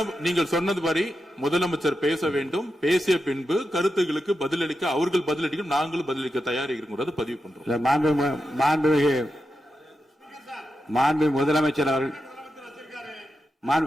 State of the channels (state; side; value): normal; both; correlation 0.88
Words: சொன்னது மாதிரி முதலமைச்சர் பேச வேண்டும். பேசிய பின்பு கருத்துகளுக்கு பதிலளிக்க அவர்கள் பதிலளிக்கும், நாங்களும் பதிலளிக்க தயாராக இருக்கிறது பதிவு பண்றோம். மாண்புமிகு முதலமைச்சர் அவர்கள்